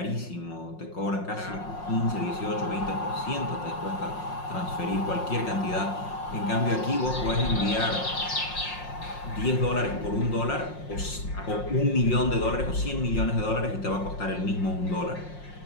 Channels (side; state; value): right; late; 5.6 ms